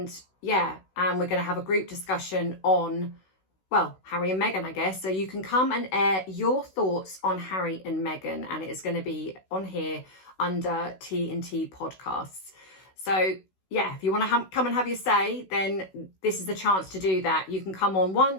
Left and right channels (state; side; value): late; right; 16 ms